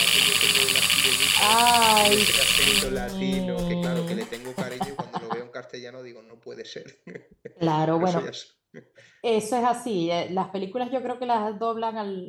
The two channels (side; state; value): both; identical; correlation 1.00